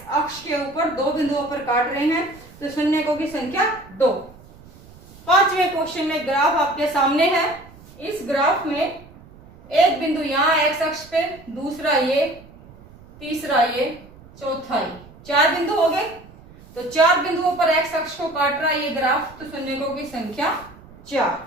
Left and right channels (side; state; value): right; noise; rumble, 22 dB below the sound